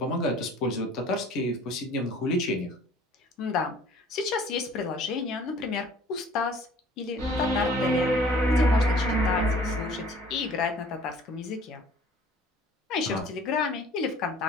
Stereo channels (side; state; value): both; normal; correlation 0.51